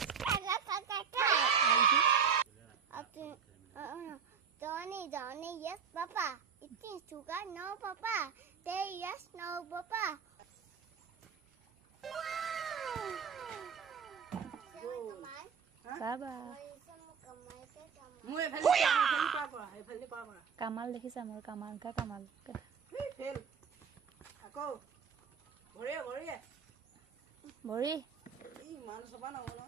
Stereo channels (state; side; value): quieter; left; 6.7 dB